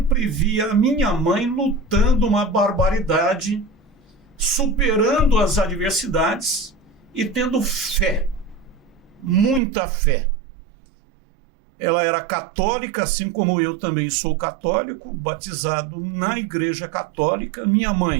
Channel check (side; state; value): left; drops out; at 9.6 s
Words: vi a minha mãe lutando uma barbaridade, superando as adversidades e tendo fé, muita fé. Ela era católica, assim como eu também sou católico, batizado na igreja católica. Minha